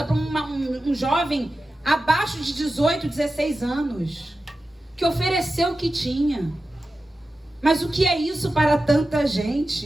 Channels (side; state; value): both; normal; correlation 0.93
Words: para um jovem abaixo de 18, 16 anos, que ofereceu o que tinha. Mas o que é isso para tanta